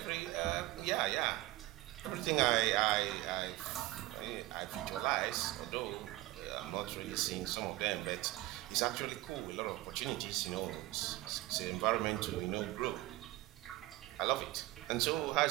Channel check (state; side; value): quieter; left; 18.3 dB